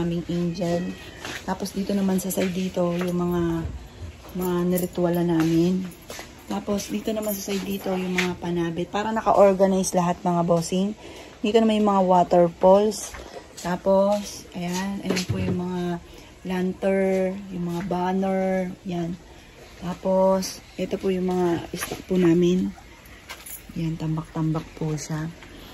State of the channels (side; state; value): both; identical; correlation 1.00